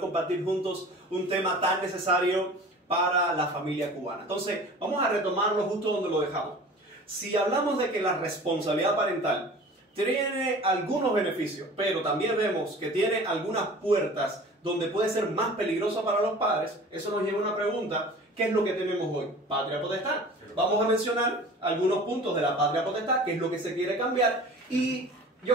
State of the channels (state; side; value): normal; both; correlation 0.42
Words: juntos un tema tan necesario para la familia cubana. Entonces, vamos a retomarlo justo donde lo dejamos. Si hablamos de que la responsabilidad parental tiene algunos beneficios, pero también vemos que tiene algunas puertas donde puede ser más peligrosa para los padres, eso nos lleva a una pregunta. ¿Qué es lo que tenemos hoy? Patria potestad. Vamos a mencionar algunos puntos de la patria potestad, qué es lo que se quiere cambiar. Y